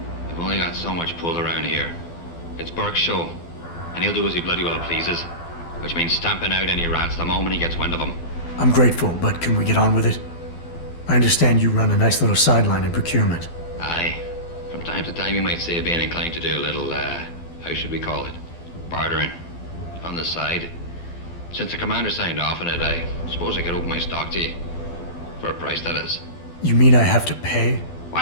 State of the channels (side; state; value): right; late; 12 ms